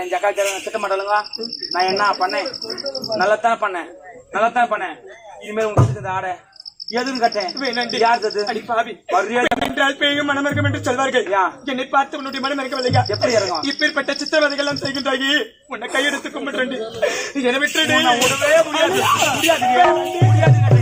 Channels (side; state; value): both; identical; correlation 1.00